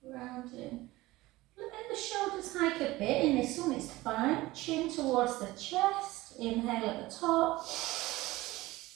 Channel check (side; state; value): left; quieter; 19.0 dB